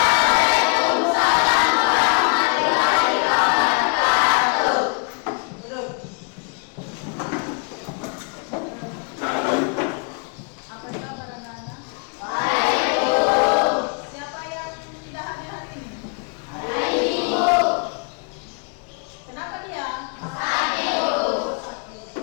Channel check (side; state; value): right; quieter; 37.5 dB